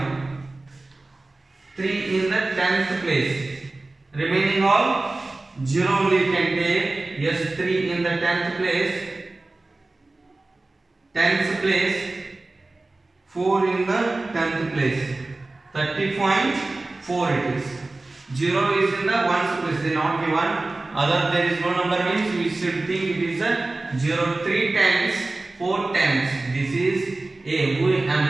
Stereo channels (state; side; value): quieter; left; 3.1 dB